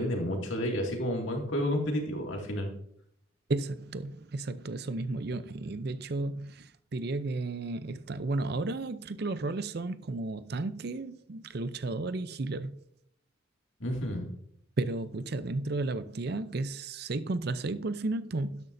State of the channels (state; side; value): normal; both; correlation 0.60